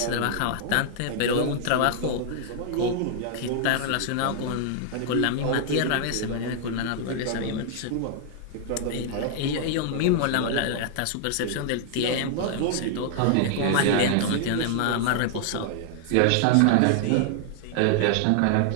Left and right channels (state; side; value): different; both; correlation -0.01